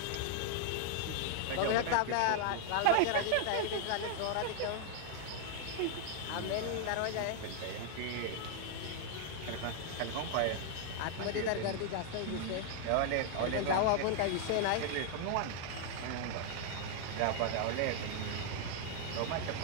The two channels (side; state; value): both; different; correlation 0.00